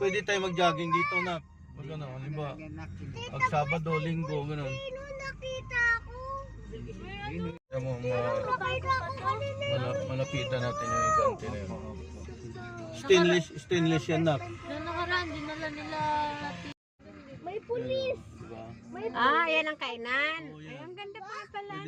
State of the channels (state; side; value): identical; both; correlation 1.00